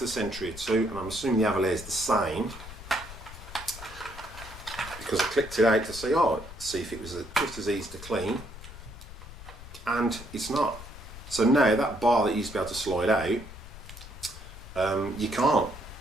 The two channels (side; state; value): left; noise; rumble, 14 dB below the sound